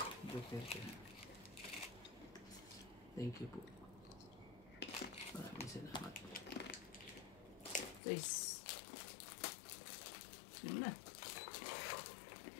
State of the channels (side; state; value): right; drops out; at 8.0 s